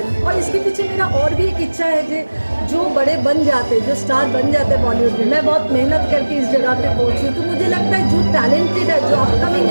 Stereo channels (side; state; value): both; inverted; correlation -1.00